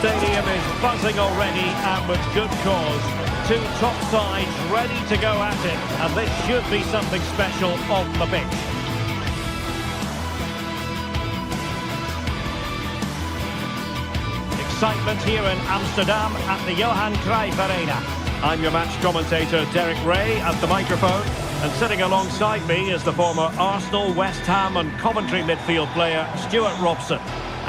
stadium is buzzing already, and with good cause. Two top sides ready to go at it, and this should be something special on the pitch. Excitement here in Amsterdam at the Johan Cruyff Arena. I'm your match commentator Derek Ray at the microphone, and sitting alongside me is the former Arsenal, West Ham and Coventry midfield player Stuart Robson.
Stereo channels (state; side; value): identical; both; correlation 1.00